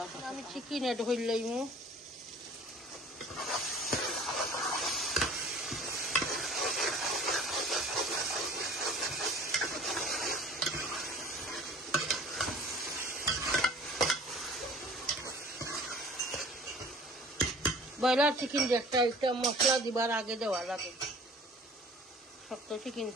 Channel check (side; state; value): both; normal; correlation 0.46